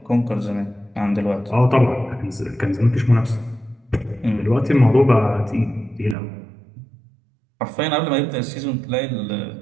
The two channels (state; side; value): drops out; left; at 6.2 s